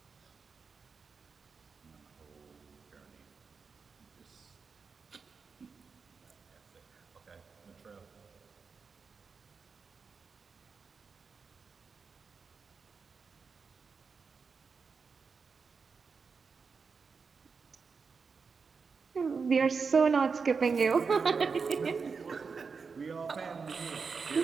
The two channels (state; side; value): quieter; left; 5.2 dB